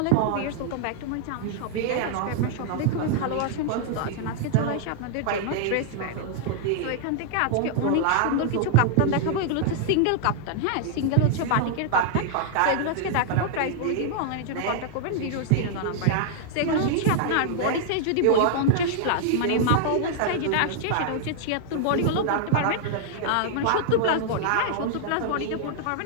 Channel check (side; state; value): both; different; correlation -0.01